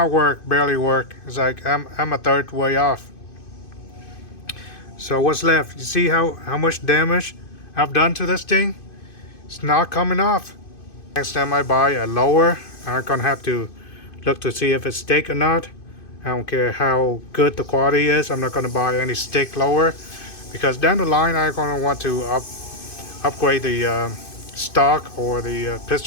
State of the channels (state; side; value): late; right; 2.5 ms